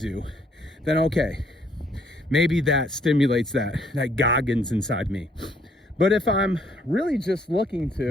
then okay, maybe that stimulates that Goggins inside me. But if I'm really just looking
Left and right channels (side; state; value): both; normal; correlation 0.66